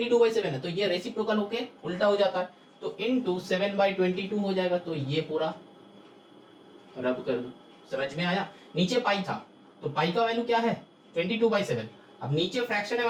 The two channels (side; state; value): both; identical; correlation 1.00